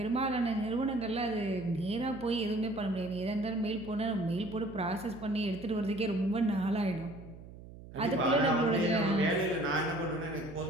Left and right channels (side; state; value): right; noise; hum, 16 dB below the sound